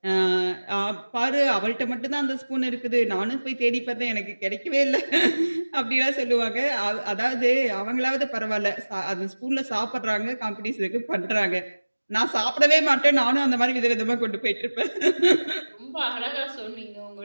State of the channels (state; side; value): inverted; both; correlation -1.00